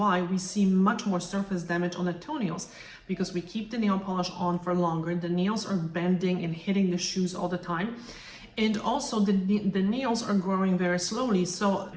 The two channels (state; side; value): identical; both; correlation 1.00